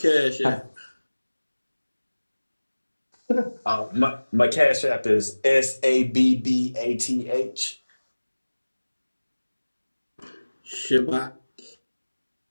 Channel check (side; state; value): both; inverted; correlation -1.00